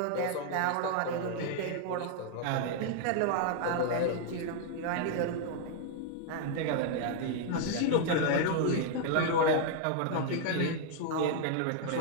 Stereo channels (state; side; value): different; both; correlation 0.00